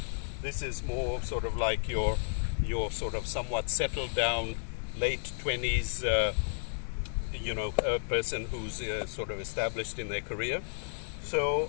this is more sort of like your sort of somewhat settled down late 20s person who's sort of established in their career.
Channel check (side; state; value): right; silent; digital silence